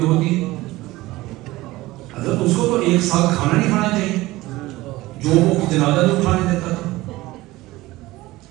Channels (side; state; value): left; quieter; 18.7 dB